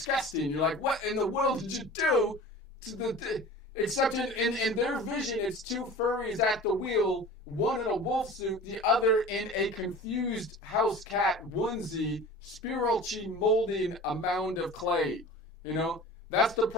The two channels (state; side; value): normal; both; correlation 0.38